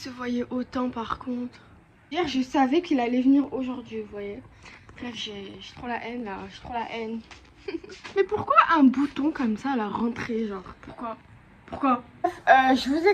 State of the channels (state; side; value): identical; both; correlation 1.00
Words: voyait autant par contre. Hier je savais qu'il allait venir aujourd'hui, vous voyez. Bref, j'ai trop la haine là, j'ai trop la haine. Mais pourquoi un bouton comme ça à la rentrée, genre Pourquoi je vous